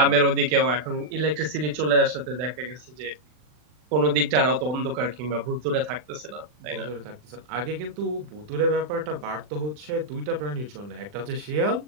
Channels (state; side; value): late; left; 40 ms